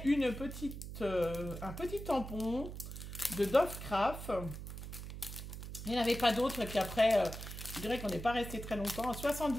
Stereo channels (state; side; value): noise; right; hum, 9 dB below the sound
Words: un petit tampon de Dove Craft. Il n'y en avait pas d'autres. Et puis après, je dirais qu'on n'est pas resté très longtemps. À